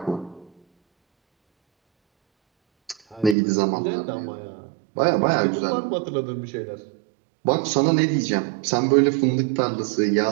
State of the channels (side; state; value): left; drops out; at 3.4 s